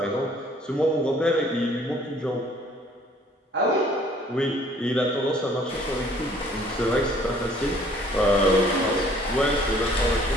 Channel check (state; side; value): normal; both; correlation 0.57